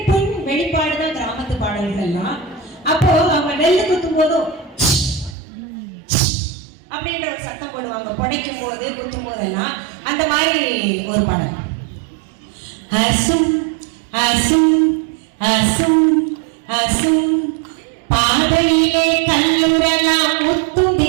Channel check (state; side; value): drops out; left; at 5.4 s